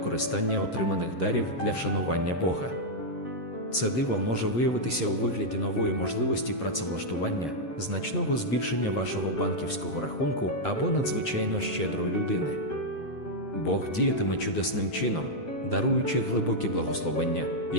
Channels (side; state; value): right; late; 7.5 ms